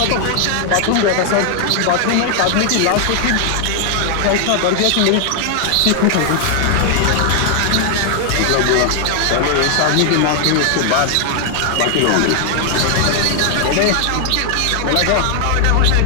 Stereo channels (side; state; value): both; different; correlation 0.00